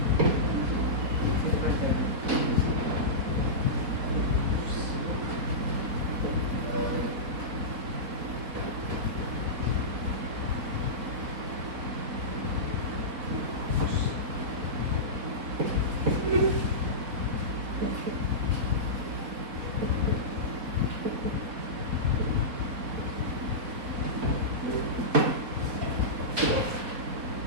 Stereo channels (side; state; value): left; late; 4.1 ms